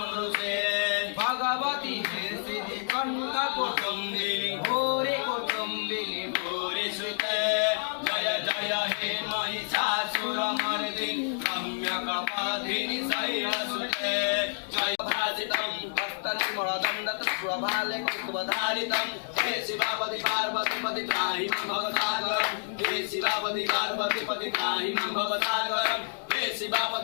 भगवती सिद्धि कंठ कुटुंबिनी भूरि कुटुंबिनी भूरि सुते जय जय हे महिषासुरमर्दिनि रम्यकपाधिनि शैलसुते जय भासितं हस्तनिमलदण्डतस्वभाले कुतुबधारितं हे शिवापति पार्वती पति त्राहि मां भवसागरं हे शिवापति पार्वती पति त्राहि मां भवसागरं हे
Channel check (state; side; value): silent; right; digital silence